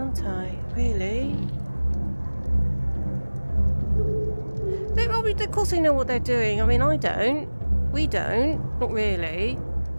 I? Really? Of course they know what they're doing. I mean, I don't. We don't. Not really.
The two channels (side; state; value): both; inverted; correlation -1.00